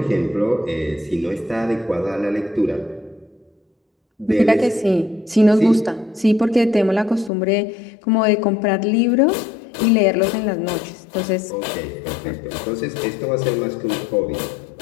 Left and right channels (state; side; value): drops out; right; at 7.3 s